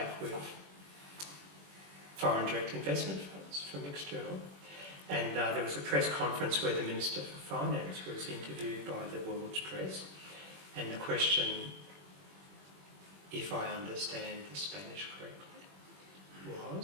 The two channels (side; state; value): left; late; 21 ms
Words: with foreign direct investment funds from external. And there was a press conference where the Minister for Finance was interviewed by the world's press, and the question, if I understand the Spanish correctly,